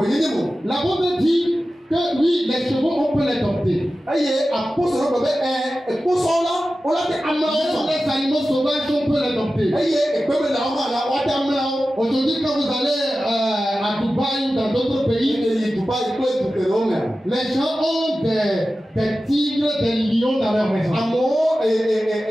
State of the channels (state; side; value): normal; both; correlation 0.94